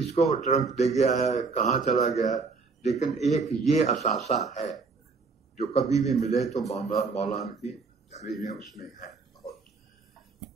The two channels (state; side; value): quieter; left; 4.5 dB